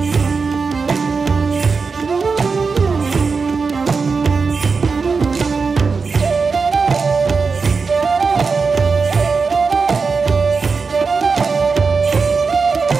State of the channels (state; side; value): quieter; left; 4.8 dB